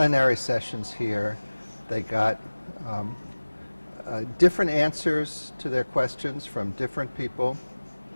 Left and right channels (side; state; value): both; inverted; correlation -1.00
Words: sessions here. They got different answers to their questions from different people